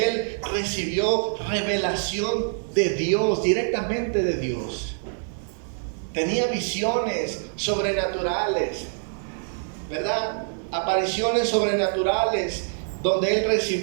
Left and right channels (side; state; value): left; silent; digital silence